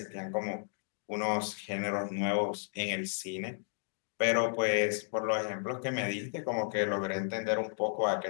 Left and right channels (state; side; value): silent; right; digital silence